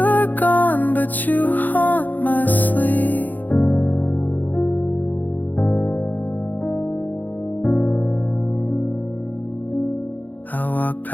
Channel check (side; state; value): right; late; 0.084 ms